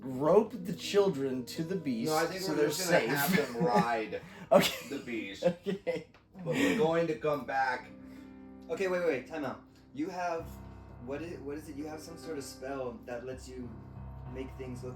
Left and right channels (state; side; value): identical; both; correlation 1.00